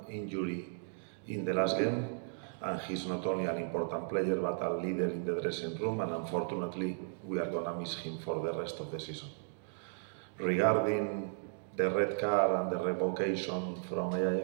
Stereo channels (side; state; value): left; silent; digital silence